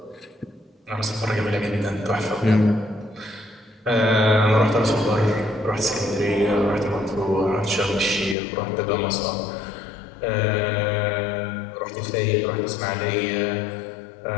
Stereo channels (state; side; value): drops out; right; at 8.3 s